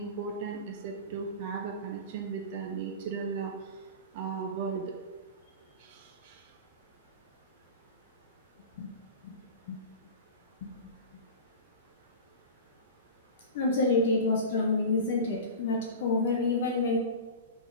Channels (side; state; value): both; inverted; correlation -0.31